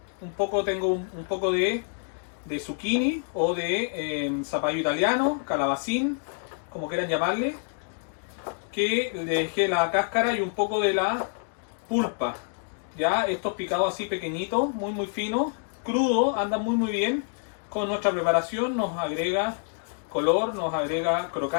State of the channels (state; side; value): silent; right; 60 dB below the other